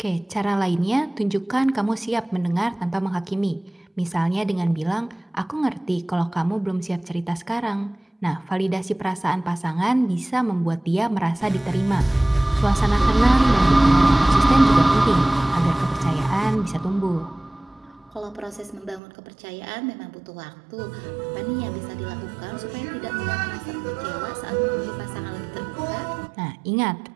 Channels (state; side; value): drops out; left; at 19.0 s